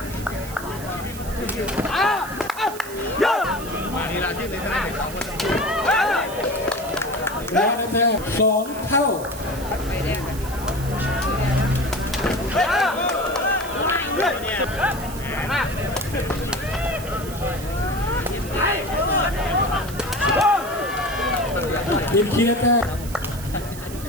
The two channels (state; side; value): noise; right; hiss, 14 dB below the sound